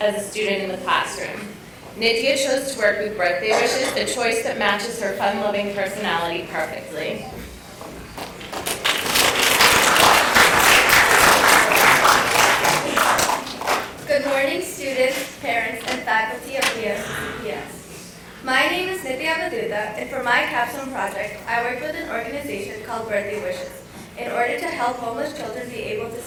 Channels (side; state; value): both; identical; correlation 1.00